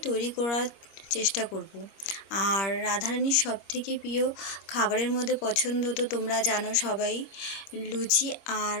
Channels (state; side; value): late; right; 25 ms